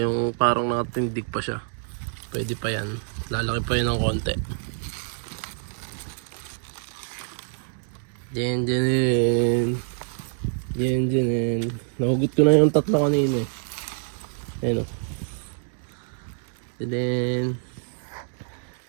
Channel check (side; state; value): left; silent; digital silence